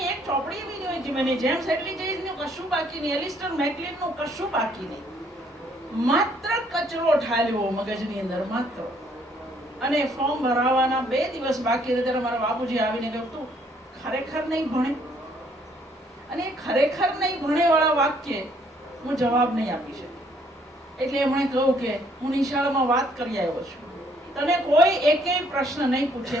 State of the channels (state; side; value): normal; both; correlation 0.65